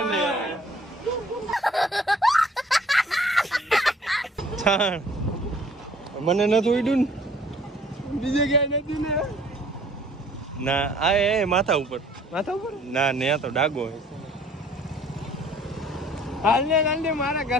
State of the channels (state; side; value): normal; both; correlation 0.55